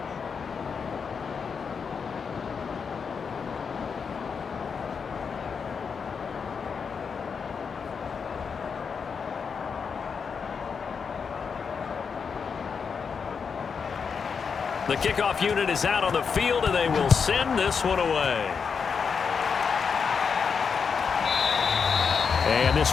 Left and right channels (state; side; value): quieter; right; 6.0 dB